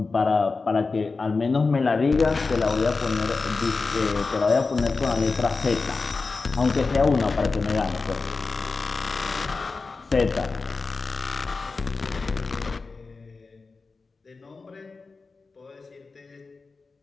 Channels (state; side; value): quieter; right; 4.1 dB